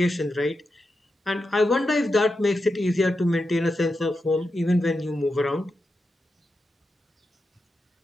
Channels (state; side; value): normal; both; correlation 0.88